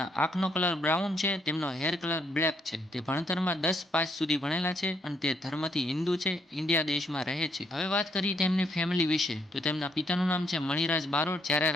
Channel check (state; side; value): normal; both; correlation 0.71